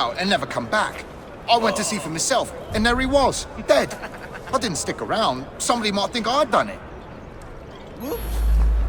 and never come back. I went to see for myself, and there he was, dead. I didn't stick around. Somebody might think I'd done it.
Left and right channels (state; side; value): identical; both; correlation 1.00